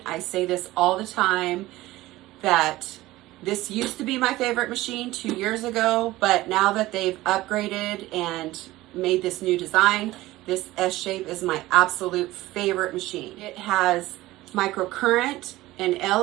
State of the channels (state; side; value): quieter; left; 17.5 dB